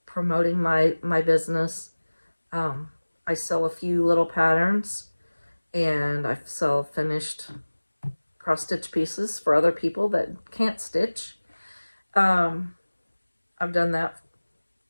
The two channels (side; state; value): both; inverted; correlation -1.00